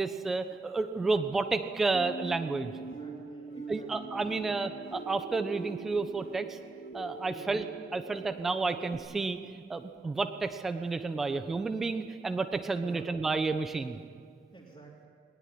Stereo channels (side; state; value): left; quieter; 3.3 dB